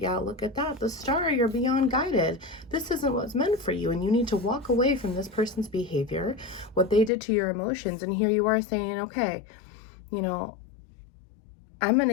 look at that. The star, you're beyond guided. This isn't what's meant for you, and you need to walk away from this person's behavior, what they did to your emotions. And here you are saying, okay, I'm going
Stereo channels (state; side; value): drops out; right; at 7.1 s